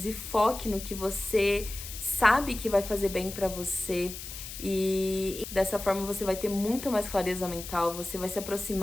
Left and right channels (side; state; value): left; noise; hiss, 10 dB below the sound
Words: e foque no que você sabe que vai fazer bem pra você. E dessa forma você vai ter muito mais clareza mental, você vai se